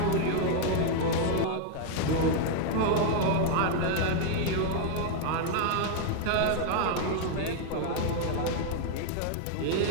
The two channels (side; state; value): both; different; correlation 0.00